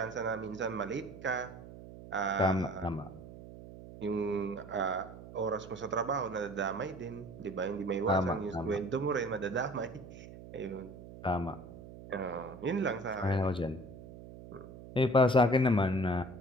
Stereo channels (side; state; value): right; noise; hum, 15 dB below the sound